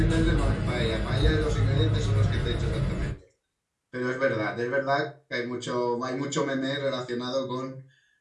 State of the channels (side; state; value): both; identical; correlation 1.00